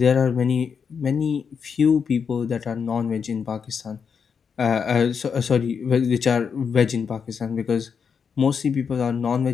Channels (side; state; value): right; quieter; 6.4 dB